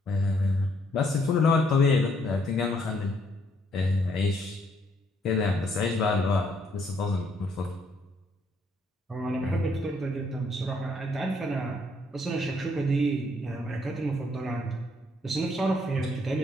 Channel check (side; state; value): both; normal; correlation 0.69